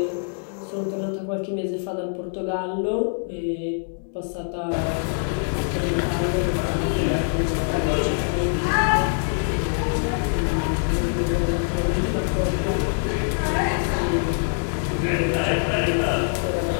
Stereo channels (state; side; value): silent; right; digital silence